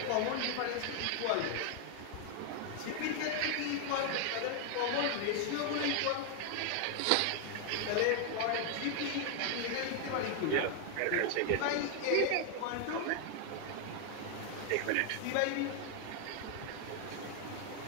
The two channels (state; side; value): different; both; correlation 0.00